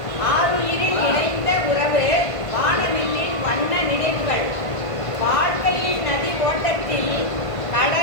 ஆருயிரில் இணைந்த உறவு வானவில்லின் வண்ண நினைவுகள். வாழ்க்கையின் நதி ஓட்டத்தில்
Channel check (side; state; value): right; late; 1.5 ms